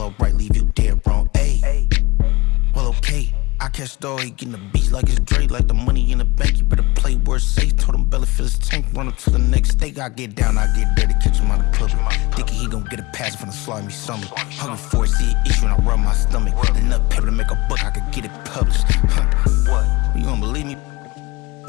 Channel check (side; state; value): right; quieter; 22.6 dB